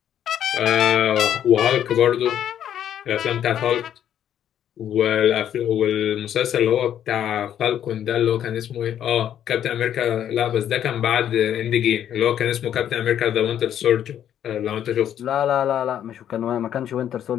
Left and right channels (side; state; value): right; quieter; 10.2 dB